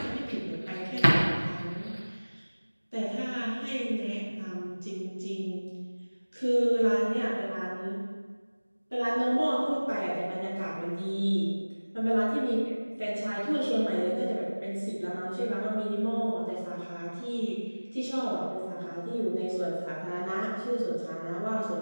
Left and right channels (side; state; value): both; inverted; correlation -1.00